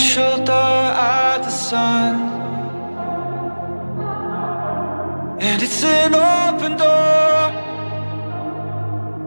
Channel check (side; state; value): both; inverted; correlation -1.00